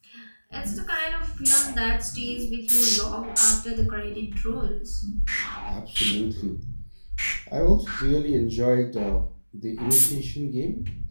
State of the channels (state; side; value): inverted; both; correlation -1.00